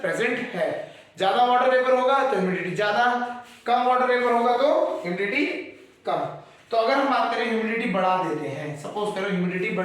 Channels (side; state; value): both; identical; correlation 1.00